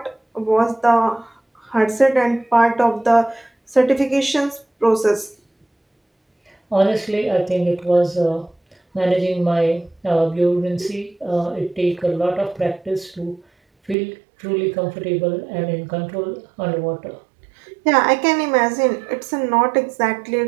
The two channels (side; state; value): left; drops out; at 14.0 s